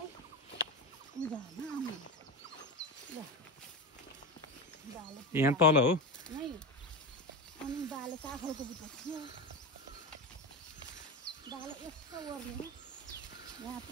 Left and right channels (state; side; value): normal; both; correlation 0.20